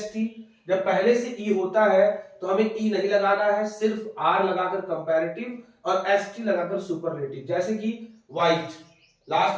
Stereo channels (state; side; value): identical; both; correlation 1.00